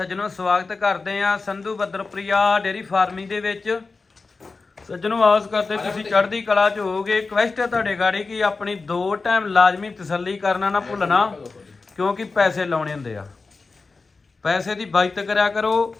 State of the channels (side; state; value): right; quieter; 4.1 dB